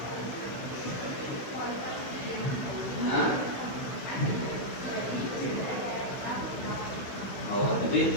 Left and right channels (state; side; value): late; right; 16 ms